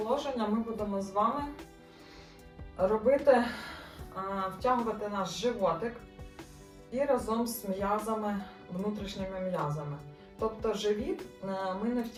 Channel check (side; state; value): both; identical; correlation 1.00